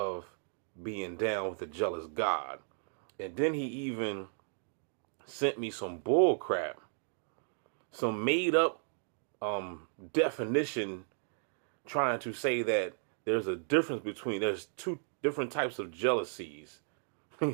being down with a jealous God. And then he even sent me some bull crap, some made up definition trying to say that there's a difference there's two different types of jealousies.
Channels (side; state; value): left; silent; digital silence